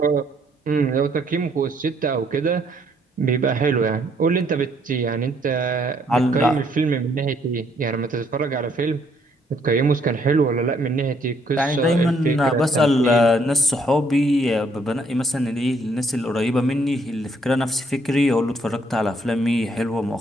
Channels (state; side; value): normal; both; correlation 0.68